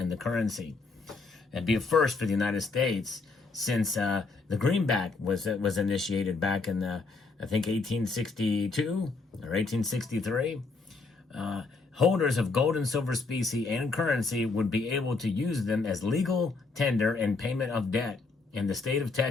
the currency. It'd be a first for the United States since the greenback was initiated back in, I think, 1862 or 1863. Holders of gold and silver specie and currency would be able to use them as legal tender and payment of debt in the state of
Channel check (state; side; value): quieter; right; 4.0 dB